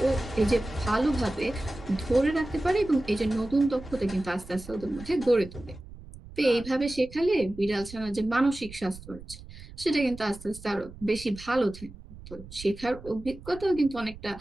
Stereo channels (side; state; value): right; noise; rumble, 16 dB below the sound